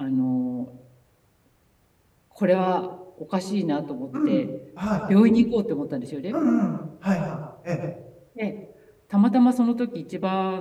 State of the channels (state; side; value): identical; both; correlation 1.00